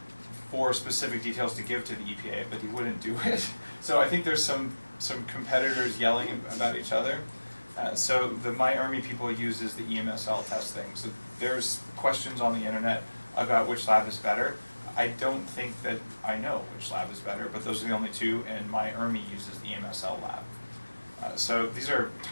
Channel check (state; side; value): inverted; both; correlation -1.00